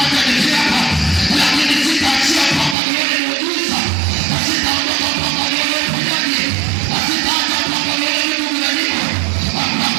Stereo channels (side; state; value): left; drops out; at 2.8 s